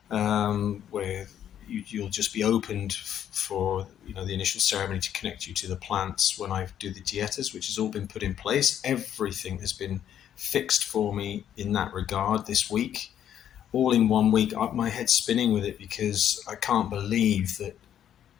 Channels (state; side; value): quieter; right; 10.1 dB